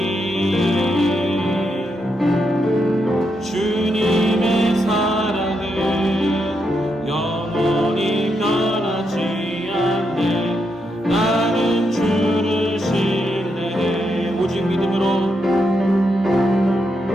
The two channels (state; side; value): normal; both; correlation 0.82